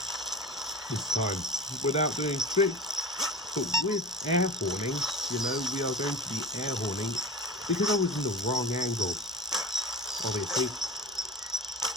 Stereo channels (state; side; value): normal; both; correlation 0.32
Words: this time. Without doing tricks, but with air horning, you know, we are going to be air horning because I was in the wrong angle. Obviously,